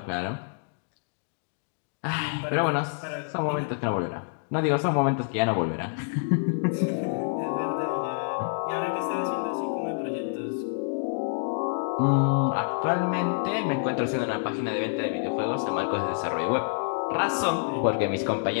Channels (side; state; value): right; silent; digital silence